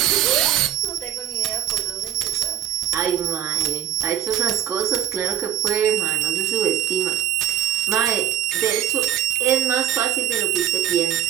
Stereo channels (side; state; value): left; quieter; 10.3 dB